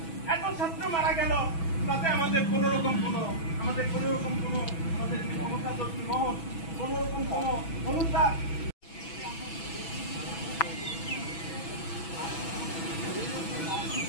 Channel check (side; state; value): right; late; 6.1 ms